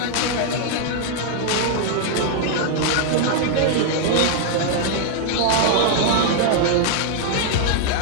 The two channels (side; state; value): both; different; correlation 0.00